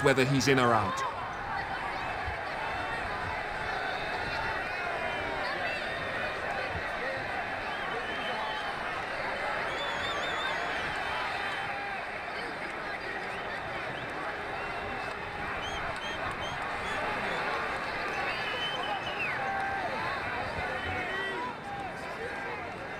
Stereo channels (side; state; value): both; identical; correlation 1.00